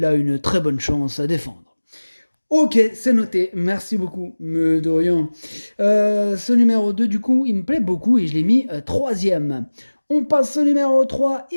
a une très bonne chance à défendre. Ok, c'est noté. Merci beaucoup. Mais de rien. Ce numéro 2, du coup, il me plaît beaucoup et je l'ai mis troisième. On passe au numéro 3,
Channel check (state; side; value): inverted; both; correlation -1.00